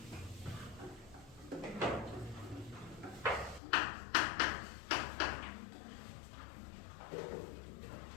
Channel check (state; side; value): drops out; right; at 3.6 s